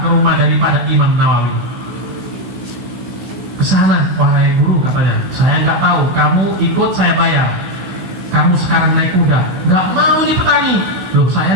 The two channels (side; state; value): left; late; 16 ms